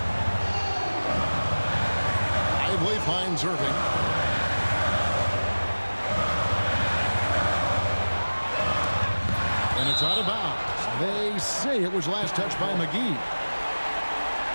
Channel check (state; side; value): inverted; both; correlation -1.00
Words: Lively finds Irving. And it's out of bounds. They say it was last touched by McGee.